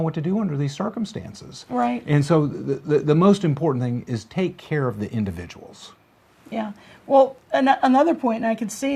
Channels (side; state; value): both; identical; correlation 1.00